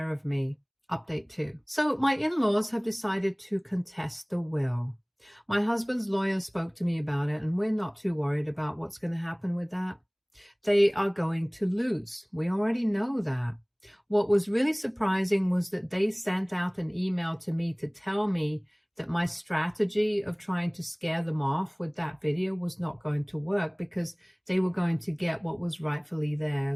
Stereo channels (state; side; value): identical; both; correlation 1.00